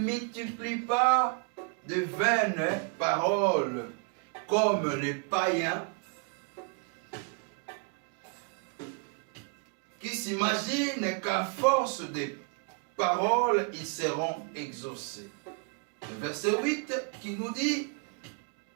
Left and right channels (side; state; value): left; quieter; 38.3 dB